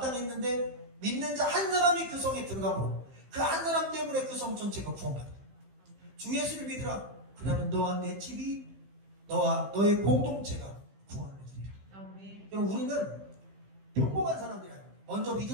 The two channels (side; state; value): left; late; 15 ms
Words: 믿는 자 한 사람이 그 성에 들어가므로 그 한 사람 때문에 그 성 전체가 구원받았다. 주 예수를 믿으라. 그러면 너와 내 집이, 너와 너의 공동체가 구원을 얻으리라. 여러분, 우리는 평범한 사람들이야. 먼저